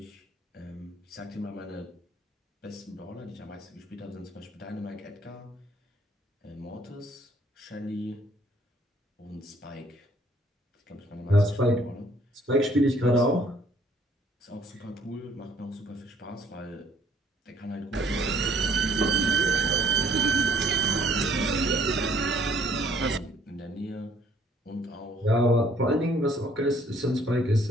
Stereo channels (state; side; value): normal; both; correlation 0.61